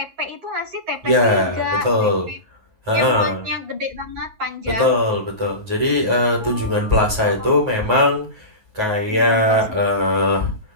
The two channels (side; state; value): left; late; 9.4 ms